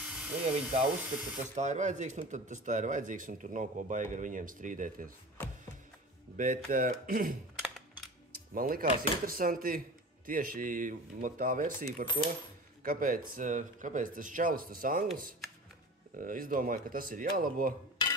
Nu, ja viņi tā uzskata, ka tas tā ir vajadzīgs, nu tad tas tā ir vajadzīgs, un tur nav ko baigi ar viņiem strīdēties. Bet man likās interesanti tieši tā versija par to, kāpēc tas čalis, tas anglis, izdomāja, ka tas ir jālabo,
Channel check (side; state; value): both; normal; correlation 0.35